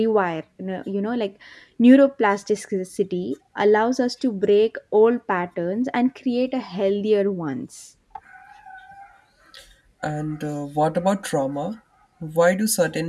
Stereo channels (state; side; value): identical; both; correlation 1.00